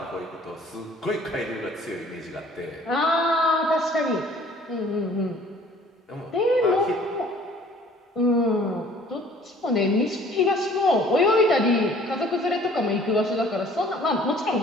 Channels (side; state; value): both; normal; correlation 0.53